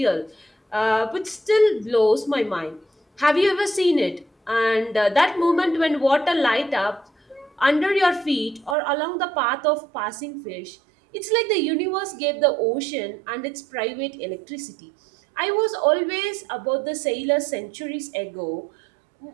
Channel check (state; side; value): drops out; left; at 8.8 s